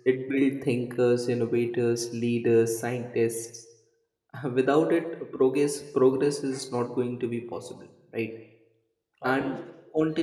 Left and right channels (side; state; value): both; identical; correlation 1.00